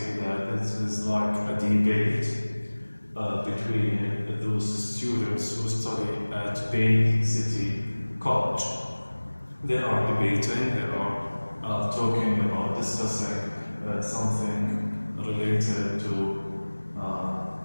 that this is like a debate between those students who study at Bay City College. They are debating, they are talking about discussing something related to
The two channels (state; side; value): inverted; both; correlation -1.00